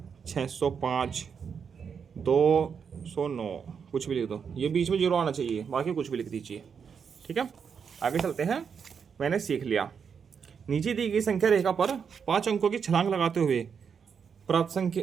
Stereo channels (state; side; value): quieter; left; 6.6 dB